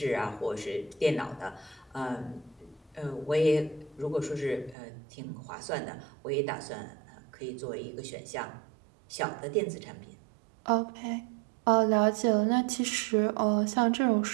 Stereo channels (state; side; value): drops out; left; at 4.8 s